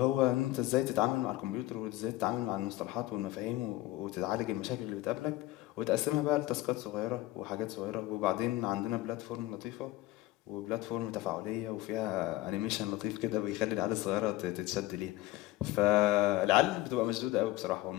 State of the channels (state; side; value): quieter; right; 16.8 dB